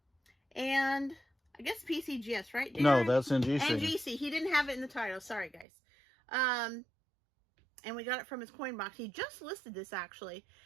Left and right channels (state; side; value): drops out; left; at 5.7 s